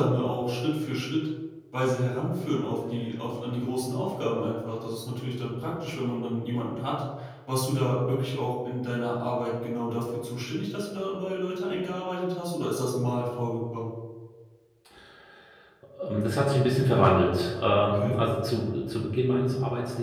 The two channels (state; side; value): identical; both; correlation 1.00